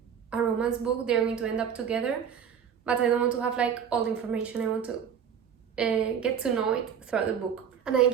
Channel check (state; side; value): quieter; left; 7.7 dB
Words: book. They're going to end up together, but I don't want to have like all the information. I want to get to know it throughout the book. And I